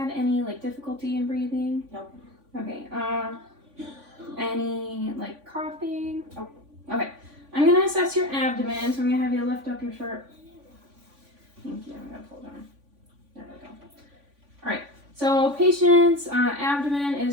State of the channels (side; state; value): left; late; 3.5 ms